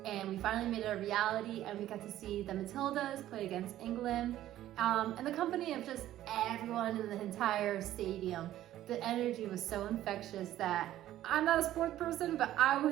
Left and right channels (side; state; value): left; quieter; 13.3 dB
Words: and we finally made it a reality, and we got to see the Matildas play against England. And the company of just everyone in the entire stadium. The energy was so infectious that I'm not a sports person, but I